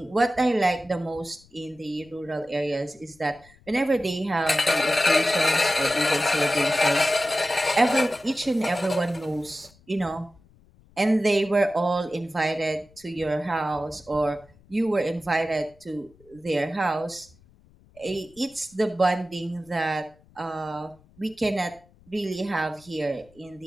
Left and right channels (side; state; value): left; noise; rumble, 28 dB below the sound